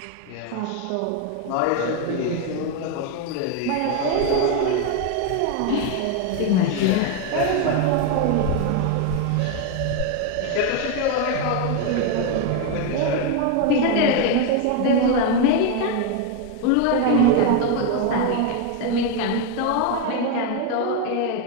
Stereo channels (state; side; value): different; both; correlation 0.02